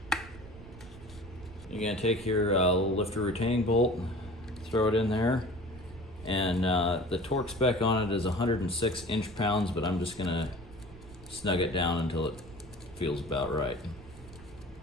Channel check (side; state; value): right; noise; rumble, 18 dB below the sound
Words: you're going to take your little lifter retaining bolt, throw it in there, and the torque spec on it is 106 inch-pounds, but I'm just going to snug it down until it feels about right.